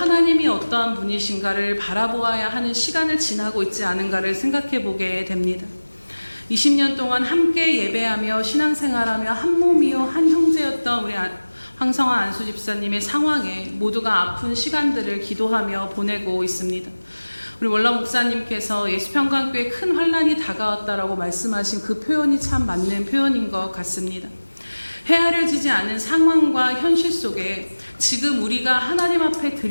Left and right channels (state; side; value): inverted; both; correlation -1.00